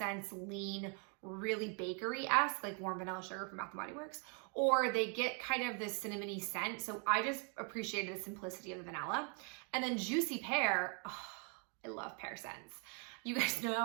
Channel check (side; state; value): left; quieter; 38.7 dB